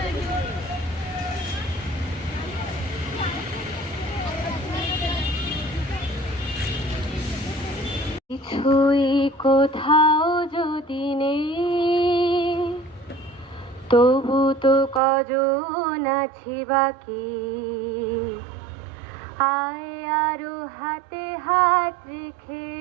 কিছুই কোথাও যদি নেই, তবু তো কজন আছি বাকি। আয় আরো হাতে হাত রেখে,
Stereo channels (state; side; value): drops out; left; at 15.0 s